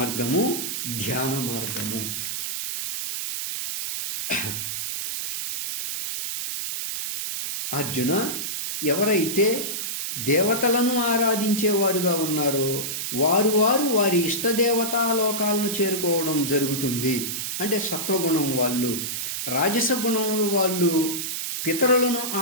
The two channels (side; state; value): right; noise; hiss, 3 dB below the sound